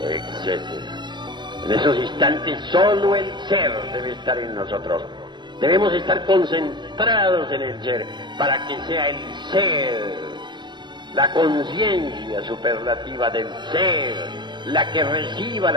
etc. En esos instantes solo el ser debe estar en nosotros. Debemos estar concentrados en el ser para que sea el ser, la conciencia superlativa del ser, la que reciba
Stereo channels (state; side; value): late; left; 0.22 ms